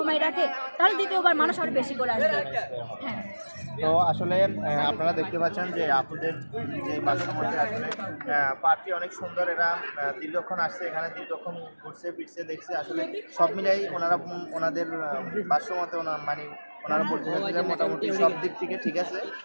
রাখে তাহলে দ্বিতীয়বার মানুষ আরো বেশি করে আসবে। হ্যাঁ। তো আসলে আপনারা দেখতে পাচ্ছেন যে আপনাদের যে বাসামতে আসলে পার্কটি অনেক সুন্দর। এরা দীর্ঘক্ষণ আসছে, এখানে দীর্ঘক্ষণ ঘুরছে ফিরছে দেখছে। আসলে সব মিলাই ওনারা ওনাদের ভাষ্যমতে মানে ওনারা বলতেছেন মোটামুটি সব দিক থেকে ঠিক আছে,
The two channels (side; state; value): both; inverted; correlation -1.00